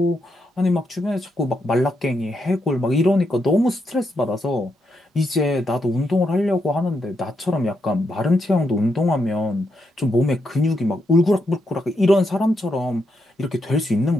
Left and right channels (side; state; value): both; normal; correlation 0.81